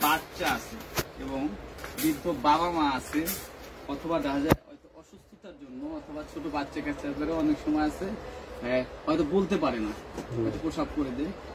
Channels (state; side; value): identical; both; correlation 1.00